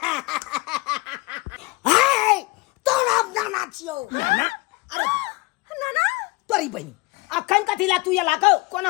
हे तोरा नाना छियो नाना अरे नाना तोरी बहनी अखन कथिला तू ये लाको कोनो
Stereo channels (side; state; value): right; quieter; 24.4 dB